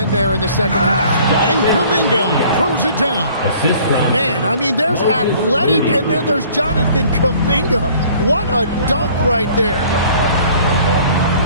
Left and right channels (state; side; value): inverted; both; correlation -0.53